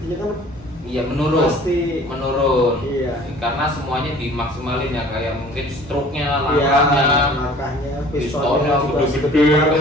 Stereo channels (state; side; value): normal; both; correlation 0.49